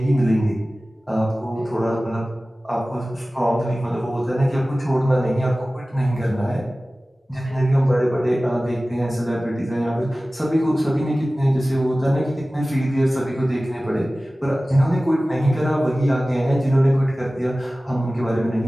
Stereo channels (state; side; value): normal; both; correlation 0.97